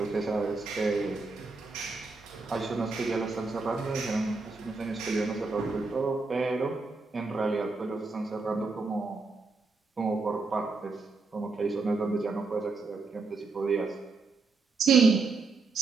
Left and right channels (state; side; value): quieter; left; 4.0 dB